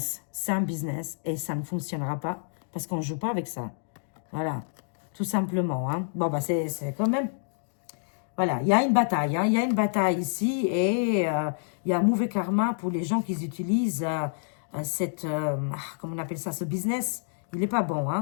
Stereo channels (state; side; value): silent; right; digital silence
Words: C'est un business et ça ne fonctionnera pas parce qu'on ne joue pas avec ça. Voilà, tout simplement. Hein. Bon, bah c'est quand même... Voilà, il y a une bataille, hein, il y a une bataille ici et il y a un mauvais karma pour les gens qui utilisent comment on appelle ça, ce business. Il n'est pas bon,